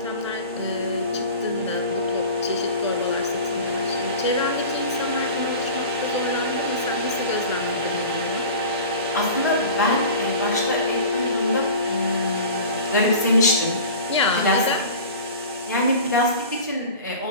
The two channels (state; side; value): inverted; both; correlation -0.37